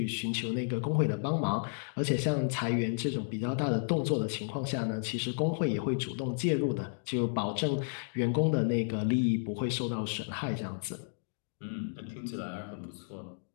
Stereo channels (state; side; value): silent; right; digital silence